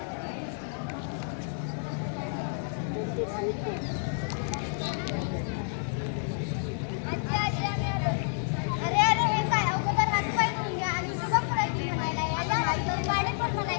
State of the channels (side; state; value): right; silent; digital silence